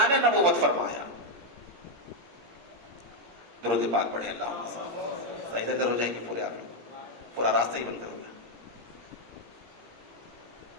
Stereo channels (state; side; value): late; left; 17 ms